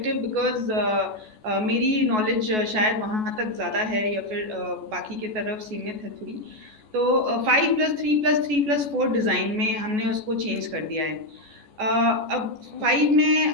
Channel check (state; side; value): late; left; 14 ms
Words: because मेरी knowledge शायद वहाँ तक ज़्यादा है या फिर बाकी की तरफ सीमित है थोड़ी. तो 5+3+3+4 डिज़ाइन में हमने उसको चेंज कर दिया है. अब 5 में